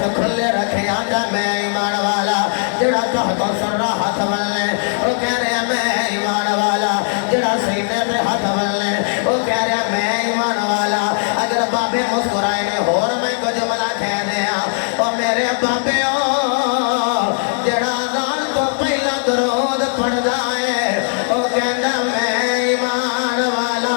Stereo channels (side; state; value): right; silent; 65 dB below the other